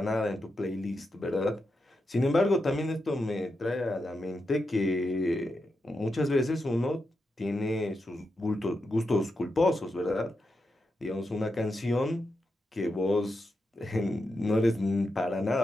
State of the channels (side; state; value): both; normal; correlation 0.86